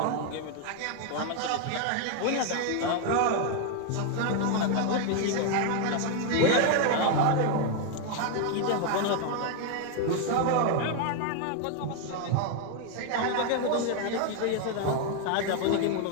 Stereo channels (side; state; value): both; different; correlation 0.01